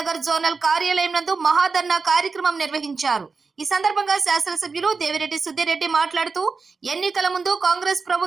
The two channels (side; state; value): left; quieter; 4.6 dB